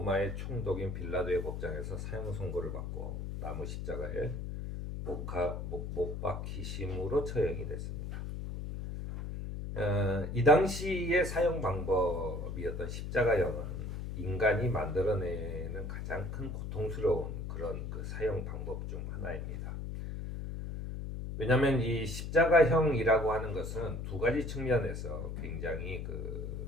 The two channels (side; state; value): left; noise; hum, 5 dB below the sound